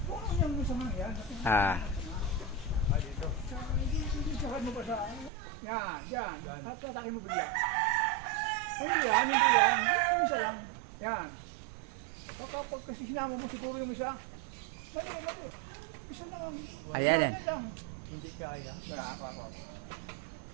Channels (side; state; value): left; drops out; at 5.3 s